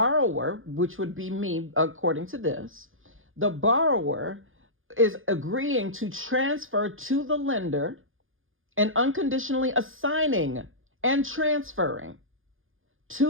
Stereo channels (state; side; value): late; left; 0.59 ms